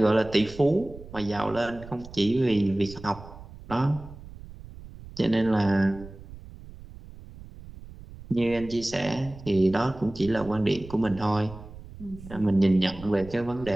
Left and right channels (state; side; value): noise; right; rumble, 16 dB below the sound